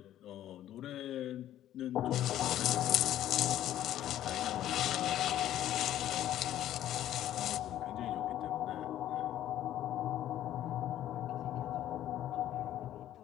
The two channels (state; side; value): quieter; right; 12.3 dB